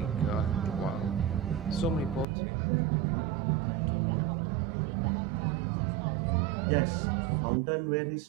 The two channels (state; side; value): drops out; left; at 2.2 s